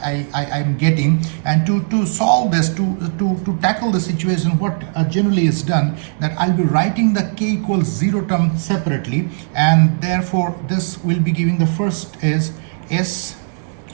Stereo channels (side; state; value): left; silent; digital silence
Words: getting, and to solve this, to tackle the situation, what generally is done, that I'll be writing the k equals 0 term separately, and therefore this will be giving the first is s,